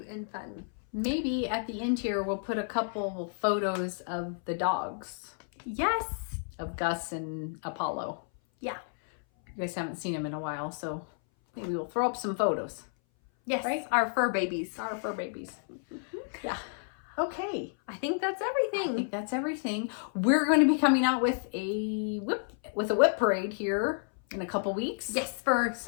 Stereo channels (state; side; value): silent; right; 57 dB below the other